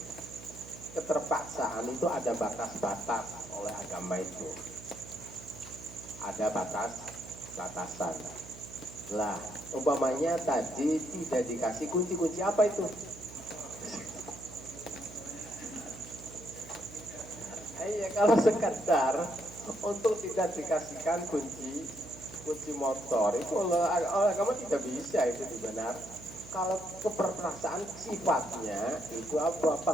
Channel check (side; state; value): right; noise; hum, 16 dB below the sound